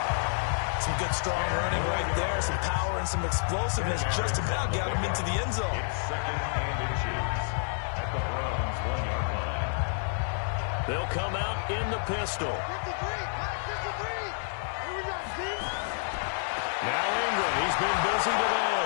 Some good strong running right there, some power and some explosiveness. Just about got him into the end zone. It's 2nd and inches at the Browns' 1-yard line. They'll come out in the pistol. 53. Here we go, Steve. Now Ingram, he's been busy today.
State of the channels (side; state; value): right; silent; digital silence